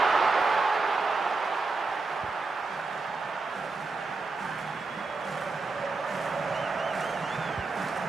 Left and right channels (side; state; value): left; quieter; 3.8 dB